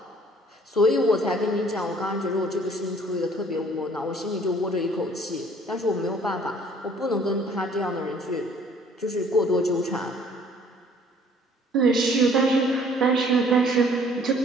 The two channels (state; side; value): normal; both; correlation 0.57